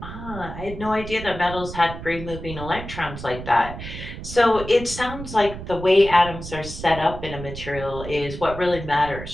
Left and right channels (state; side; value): noise; right; rumble, 10 dB below the sound